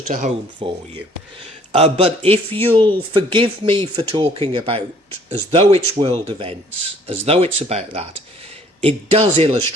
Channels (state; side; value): normal; both; correlation 0.58